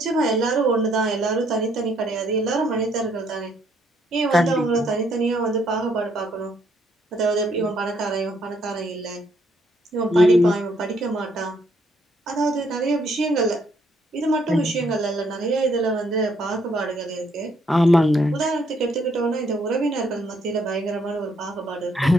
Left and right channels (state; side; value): normal; both; correlation 0.70